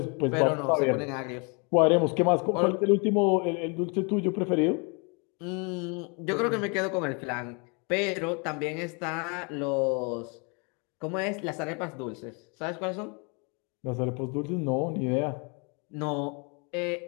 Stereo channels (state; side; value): quieter; right; 33.8 dB